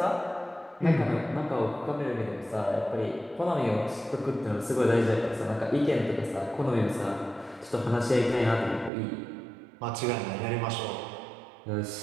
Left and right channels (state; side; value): drops out; left; at 8.9 s